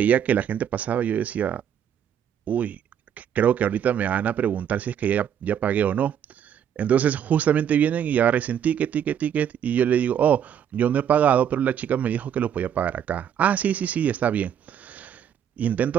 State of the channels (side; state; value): left; quieter; 9.0 dB